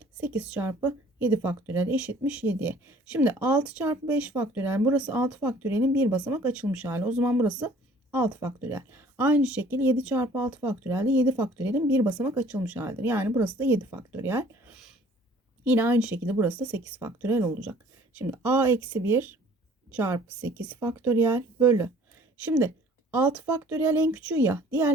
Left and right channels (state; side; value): normal; both; correlation 0.54